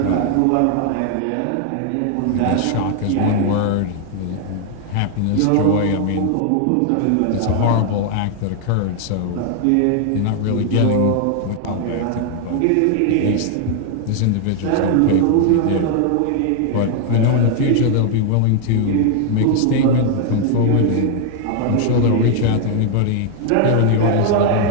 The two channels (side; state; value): both; different; correlation 0.00